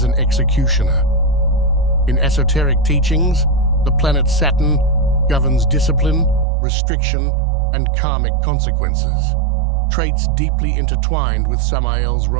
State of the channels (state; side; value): drops out; left; at 6.5 s